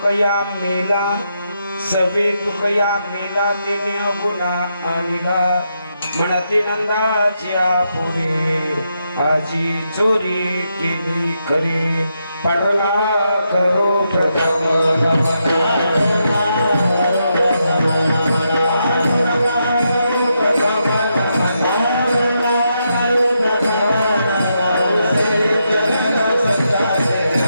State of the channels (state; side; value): inverted; both; correlation -0.82